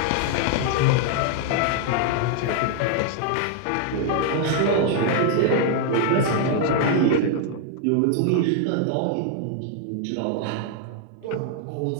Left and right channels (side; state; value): both; different; correlation 0.00